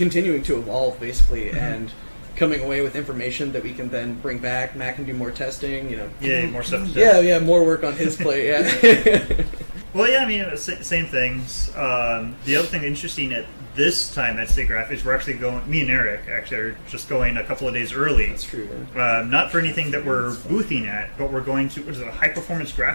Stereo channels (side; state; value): both; inverted; correlation -1.00